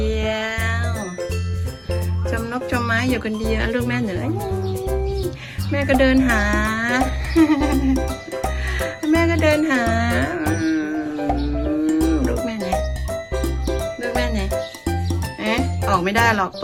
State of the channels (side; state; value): both; identical; correlation 1.00